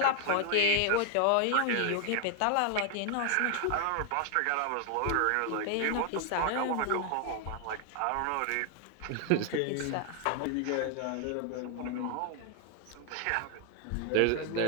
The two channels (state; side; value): different; both; correlation 0.00